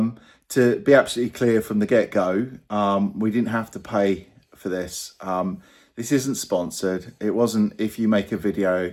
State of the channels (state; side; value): identical; both; correlation 1.00